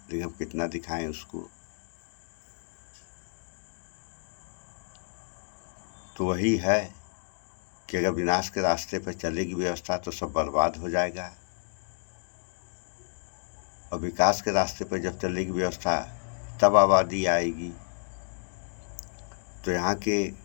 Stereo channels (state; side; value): silent; right; digital silence